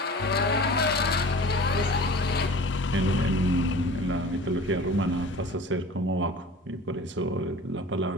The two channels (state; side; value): normal; both; correlation 0.41